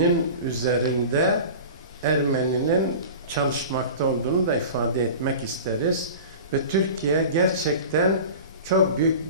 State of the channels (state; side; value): inverted; both; correlation -0.36